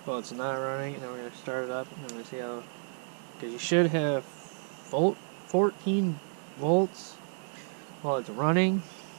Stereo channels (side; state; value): left; silent; digital silence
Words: while it's not running, and then we're gonna start it up, and then we're gonna see how, because you should have 14 volts while it's running,